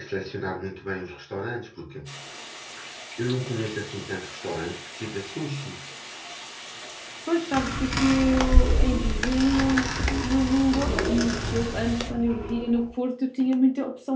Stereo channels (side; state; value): both; identical; correlation 1.00